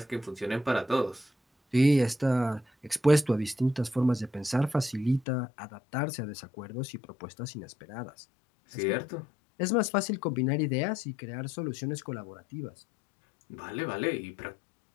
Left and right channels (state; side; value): drops out; right; at 5.2 s